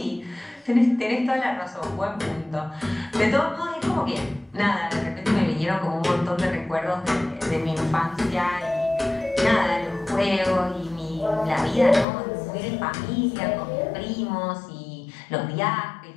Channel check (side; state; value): right; drops out; at 12.1 s